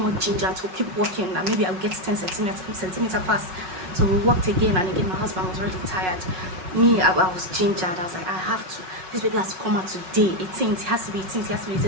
ginger to keep working, and maybe I'll get 10 centimeters fast. So we worked again and again. My husband was already tired. Me, I was gingered. I was like, I have to. This baby has to come out today. 18th, it has to be 18th, it has to be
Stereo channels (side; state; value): left; late; 5.4 ms